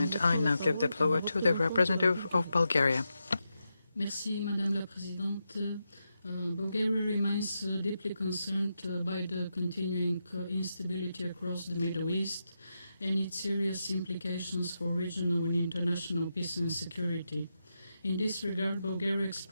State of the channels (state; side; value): inverted; both; correlation -0.87